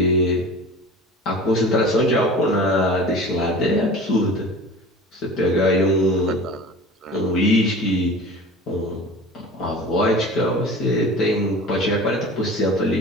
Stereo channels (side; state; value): both; normal; correlation 0.38